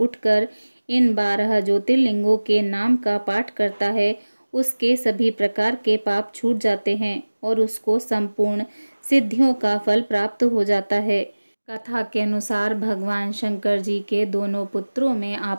इन 12 ज्योतिर्लिंगों के नाम का पाठ करता है, उसके सभी प्रकार के पाप छूट जाते हैं और उसको संपूर्ण सिद्धियों का फल प्राप्त हो जाता है। कथा के अनुसार भगवान शंकर जी के दोनों पुत्रों में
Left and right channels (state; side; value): inverted; both; correlation -1.00